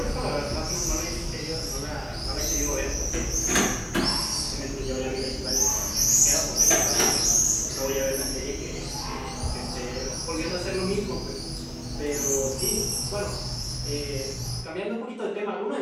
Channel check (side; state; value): both; identical; correlation 1.00